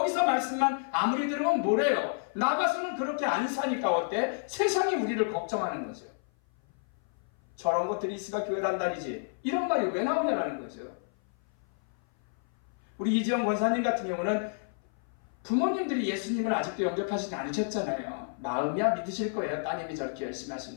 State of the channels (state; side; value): silent; right; 56 dB below the other